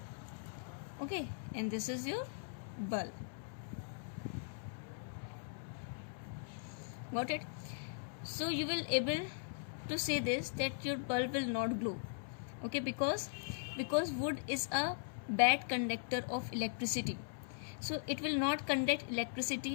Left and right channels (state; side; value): silent; right; 51 dB below the other